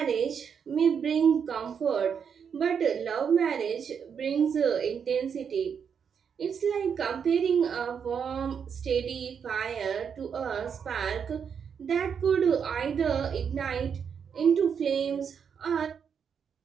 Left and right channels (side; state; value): left; quieter; 7.1 dB